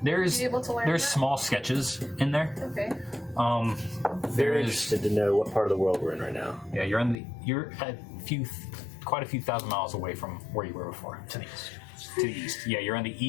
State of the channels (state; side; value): drops out; right; at 7.2 s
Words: There's Are you able to learn there's that? small sketches in there. Okay. There Very is interested to know what part of the world we're in right now. yeah you're a few quite a few thousand miles away from where you were before. To the east. To the east. Yeah, you're in the